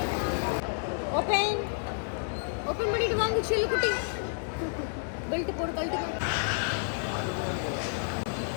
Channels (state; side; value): silent; right; 58 dB below the other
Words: കുട്ടി ബെൽറ്റ് പോട് ബെൽറ്റ്